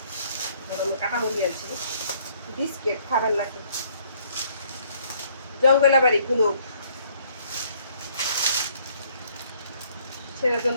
গরমে কাটা মুরগি আনছি। বিস্কিট খাবেন নাকি? জঙ্গলা বাড়ি গুলো ছেলের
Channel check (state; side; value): inverted; both; correlation -0.63